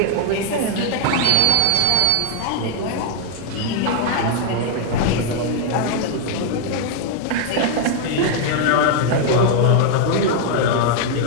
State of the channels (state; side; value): different; both; correlation 0.00